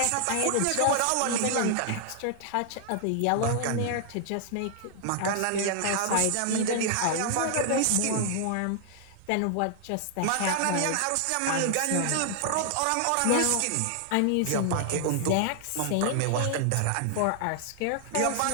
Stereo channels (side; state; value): both; different; correlation 0.00